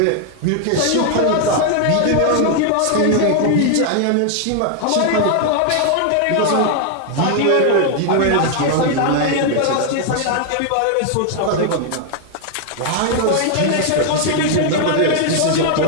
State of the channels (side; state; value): both; different; correlation 0.00